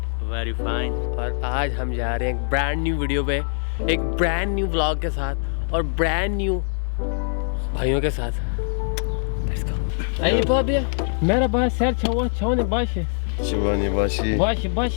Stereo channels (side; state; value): right; silent; 63 dB below the other